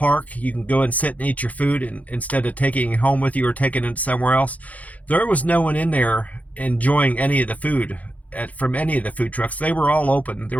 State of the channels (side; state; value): right; late; 0.072 ms